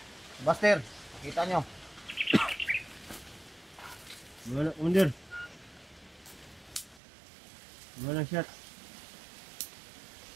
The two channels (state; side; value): drops out; left; at 7.0 s